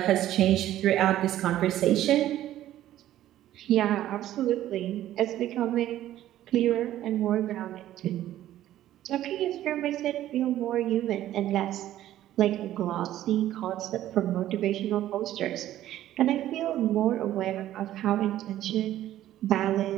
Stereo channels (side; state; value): left; quieter; 13.1 dB